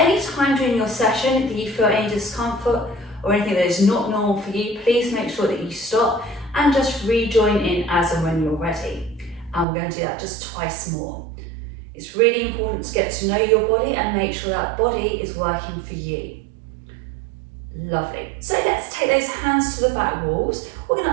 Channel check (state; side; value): drops out; left; at 9.7 s